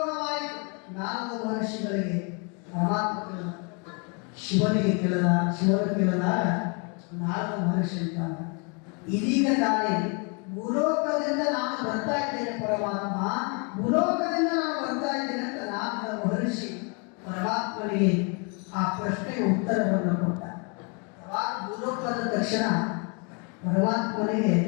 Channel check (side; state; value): right; quieter; 34.8 dB